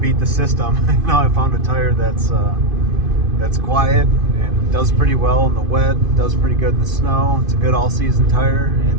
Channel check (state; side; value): late; left; 2.5 ms